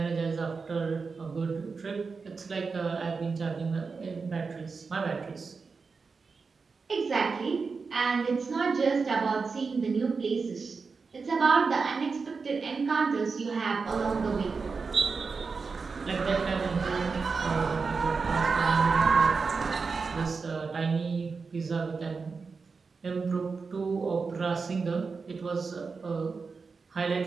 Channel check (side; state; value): left; quieter; 4.8 dB